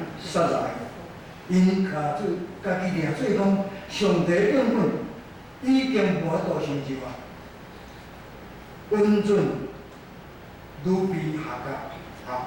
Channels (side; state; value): both; identical; correlation 1.00